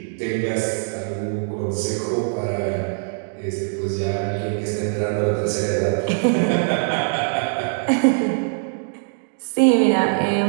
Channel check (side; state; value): left; silent; digital silence